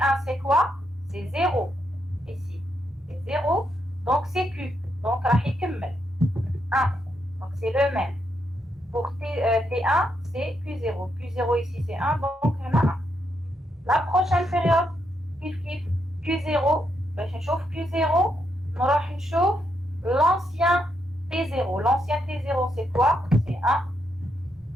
c'est quoi? C'est 0. Ici, c'est 0. Donc, c'est Q. Donc, راح يكمل 1. Donc, c'est le même. Pour T1, c'est Q0. Q0 ici, c'est 1. Donc, on a 1. La prochaine période, Q0, باش نشوف Q0 نروح نشوف l'ancien T0. L'ancien T0 c'est quoi? C'est 1.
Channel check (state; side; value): normal; both; correlation 0.79